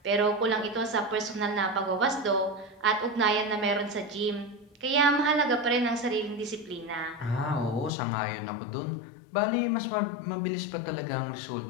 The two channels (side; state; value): right; drops out; at 7.9 s